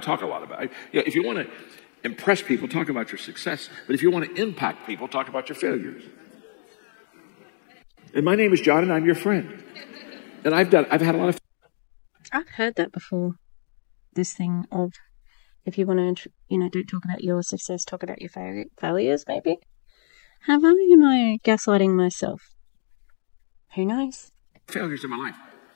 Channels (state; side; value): silent; right; digital silence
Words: talk a lot about it. If you want to impress people, talk about your success. But if you want to impact people, talk about your failures. And my name is John, and I'm your friend. And I've had a lot of. I've heard that before. This thing of, if you want to, don't talk about your success, talk about your failures, maybe. Have I, am I gaslighting myself? Who knows? Failures in my life.